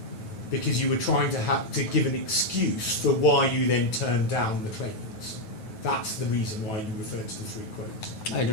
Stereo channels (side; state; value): right; late; 9.2 ms